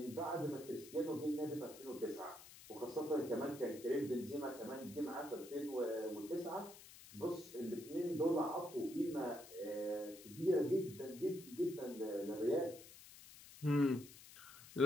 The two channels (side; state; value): left; noise; hiss, 17 dB below the sound